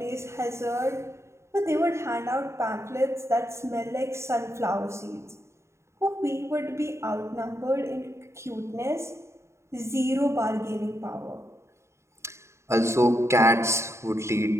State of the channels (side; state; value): left; late; 0.13 ms